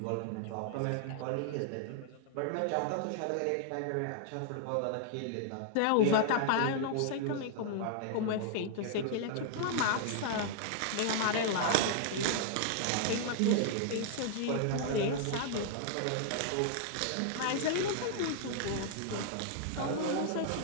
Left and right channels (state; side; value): different; both; correlation -0.01